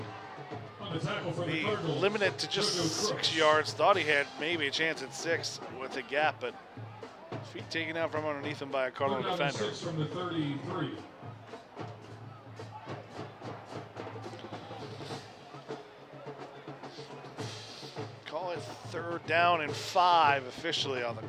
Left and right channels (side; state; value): both; identical; correlation 1.00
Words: be limited to just 6 yards. Thought he had maybe a chance at 6 with the gap, but feet taken out from underneath him by a Cardinal defender. 6 from the 33. Call it 3rd down and 5 officially on the